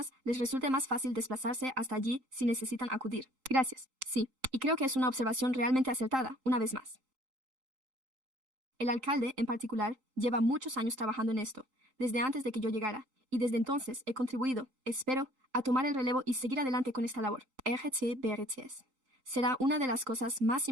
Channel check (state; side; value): late; left; 3.8 ms